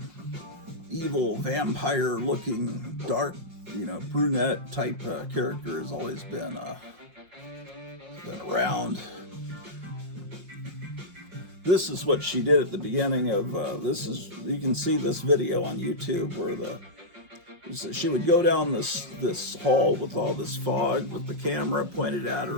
evil vampire-looking, dark, brunette type character has always been around. This is what she did at the beginning of you can see this video on YouTube where she would go down this hall with all this fog with the camera pointed at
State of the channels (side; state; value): left; late; 5.6 ms